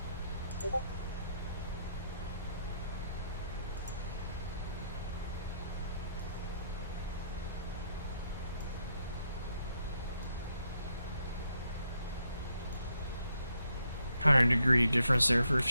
$100-degree difference there for a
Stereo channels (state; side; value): inverted; both; correlation -0.76